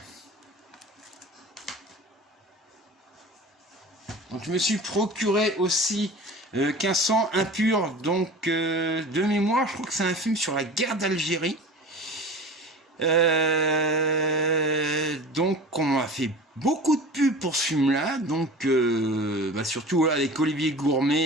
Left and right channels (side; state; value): both; normal; correlation 0.37